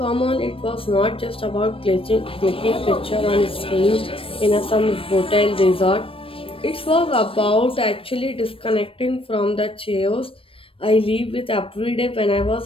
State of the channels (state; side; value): late; right; 0.26 ms